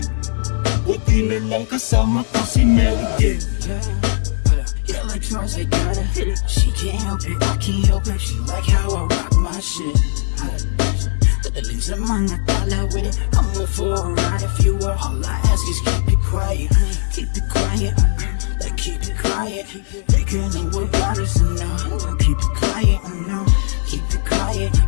Buti na lang kasama ko si Mary Jane. Electrons, I gotta hit it. She can't help it, I can't help her. She like how I rock my shit. Dadaling sa mga tala with it. I'm for a ride if you were. All I ask is keep it quiet. Keep it quiet, like keep it quiet. They can know what got us enough. Keep it quiet, no. Keep it quiet,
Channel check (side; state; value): right; silent; 67 dB below the other